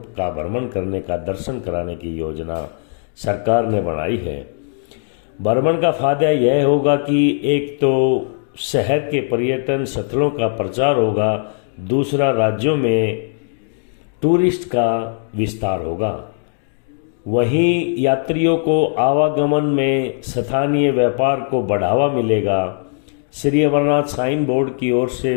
का भ्रमण करने का दर्शन कराने की योजना सरकार ने बनाई है। भ्रमण का फायदा यह होगा कि एक तो शहर के पर्यटन स्थलों का प्रचार होगा, दूसरा राज्यों में टूरिस्ट का विस्तार होगा। वहीं यात्रियों को आवागमन में स्थानीय व्यापार को बढ़ावा मिलेगा। श्री अमरनाथ श्राइन बोर्ड की ओर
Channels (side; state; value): right; silent; digital silence